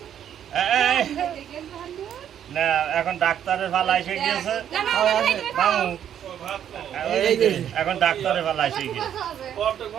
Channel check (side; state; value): left; quieter; 9.7 dB